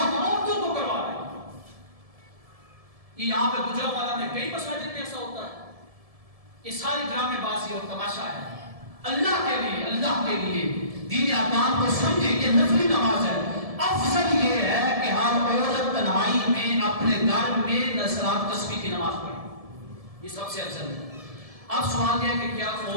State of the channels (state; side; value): late; left; 1.7 ms